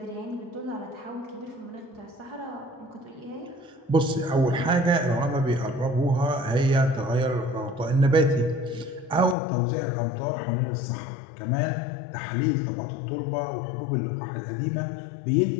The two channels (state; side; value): drops out; right; at 9.3 s